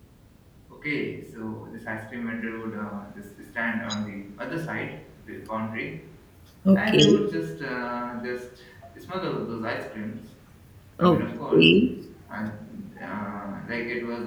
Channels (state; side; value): identical; both; correlation 1.00